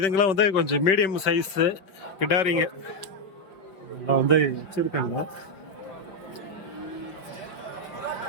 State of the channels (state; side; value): late; right; 5.4 ms